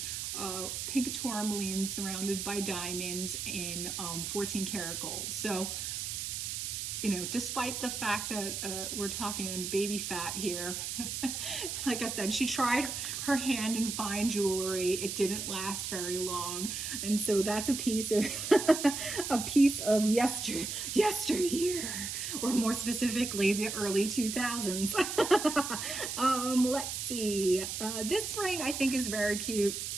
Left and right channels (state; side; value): noise; right; hiss, 4 dB below the sound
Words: pink tourmaline surrounded by diamonds in 14 karat gold. So, despite the fact that we're talking baby fat here, like I said, she tried her hand in fine jewelry. It didn't last very long. And so that's a piece of yesteryear, or more specifically, the early 2000s. Let's see. This ring I think is very cute.